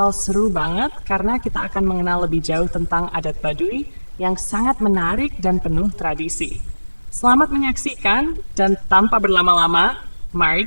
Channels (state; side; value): inverted; both; correlation -1.00